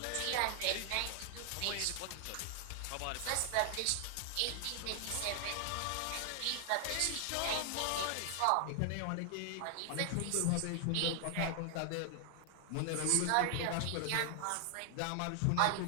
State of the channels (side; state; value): both; different; correlation 0.00